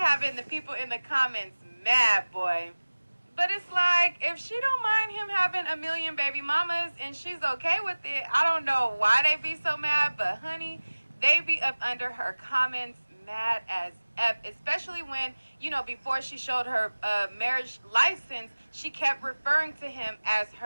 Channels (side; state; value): both; inverted; correlation -1.00